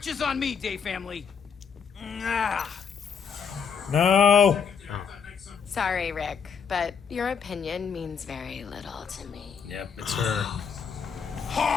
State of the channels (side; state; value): right; quieter; 6.5 dB